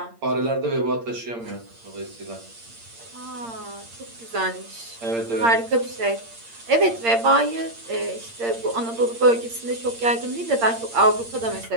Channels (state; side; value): late; left; 8.7 ms